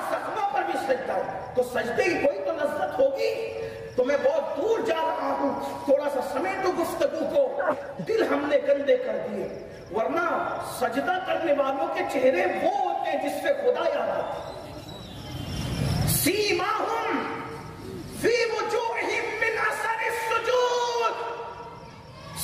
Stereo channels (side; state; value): both; identical; correlation 1.00